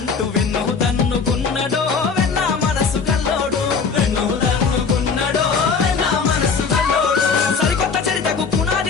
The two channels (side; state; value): right; quieter; 5.4 dB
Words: వెన్ను తన్నుకున్నడో వెన్నా మనసు కల్లోడు వెన్ను తన్నుకున్నడో వెన్నా మనసు కల్లోడు సరికొత్త చరితకు